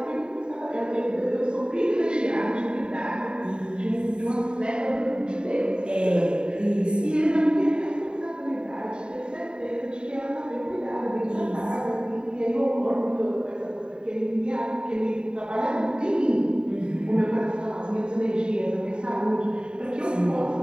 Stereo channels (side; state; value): left; late; 0.049 ms